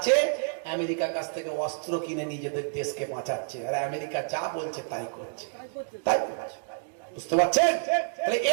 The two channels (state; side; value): silent; left; digital silence